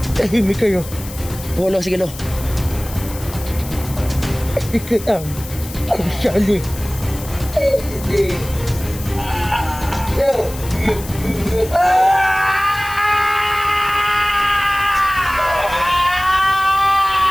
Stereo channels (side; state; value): left; noise; hiss, 15 dB below the sound